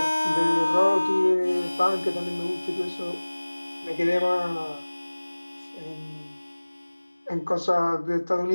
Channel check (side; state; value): both; inverted; correlation -1.00